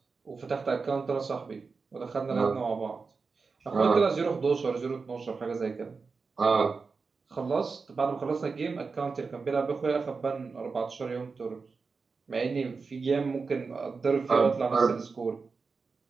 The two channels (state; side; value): quieter; left; 4.7 dB